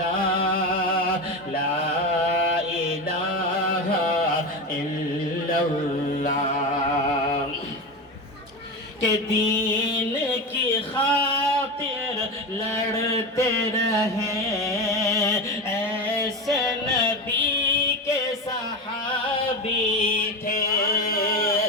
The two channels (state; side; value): normal; both; correlation 0.21